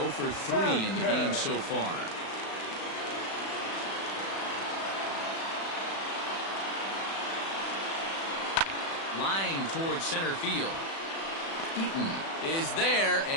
for 3 in the game so far. Line towards center field. Eaton is there,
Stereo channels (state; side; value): late; right; 36 ms